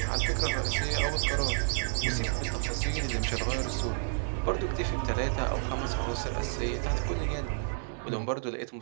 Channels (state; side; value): silent; left; digital silence